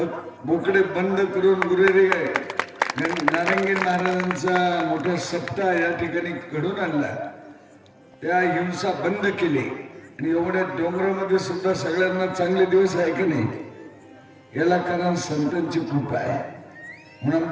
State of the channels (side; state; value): both; identical; correlation 1.00